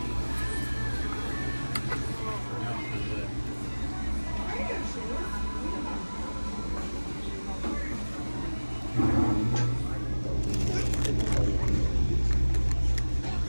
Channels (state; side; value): inverted; both; correlation -1.00